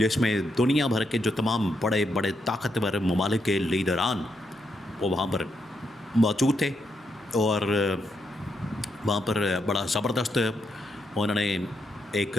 میں دنیا بھر کے جو تمام بڑے بڑے طاقتور ممالک کے لیڈران وہ وہاں پر موجود تھے، اور وہاں پر بڑا زبردست انہوں نے ایک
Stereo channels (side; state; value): right; noise; hum, 29 dB below the sound